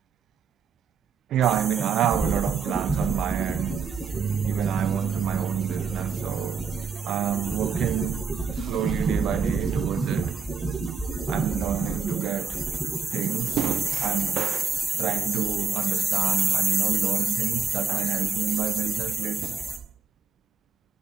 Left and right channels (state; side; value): quieter; left; 5.6 dB